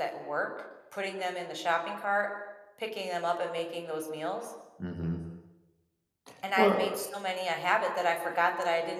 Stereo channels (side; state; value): both; identical; correlation 1.00